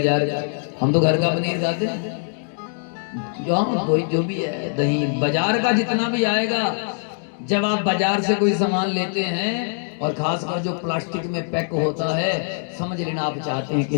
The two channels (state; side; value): silent; right; 64 dB below the other